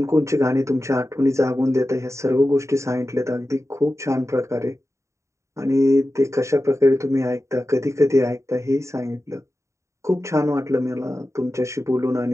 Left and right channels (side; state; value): left; late; 0.14 ms